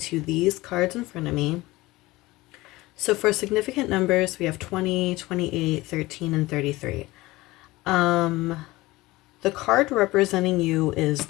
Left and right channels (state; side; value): quieter; right; 19.7 dB